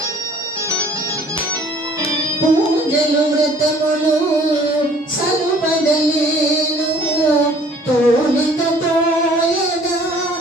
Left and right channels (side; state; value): both; normal; correlation 0.54